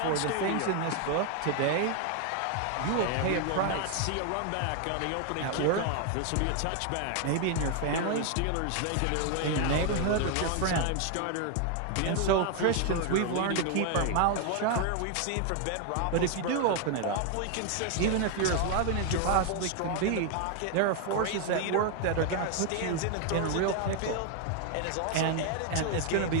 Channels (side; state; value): both; different; correlation 0.01